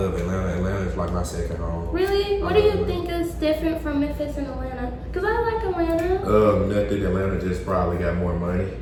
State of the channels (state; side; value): identical; both; correlation 1.00